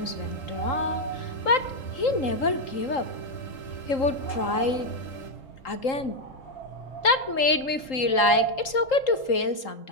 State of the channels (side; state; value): right; late; 3.8 ms